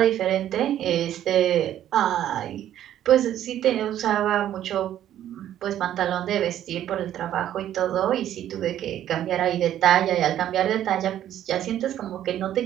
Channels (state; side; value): quieter; left; 11.5 dB